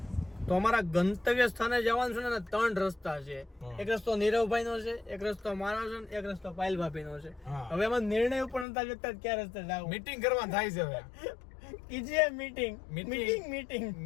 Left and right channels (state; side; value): drops out; right; at 8.7 s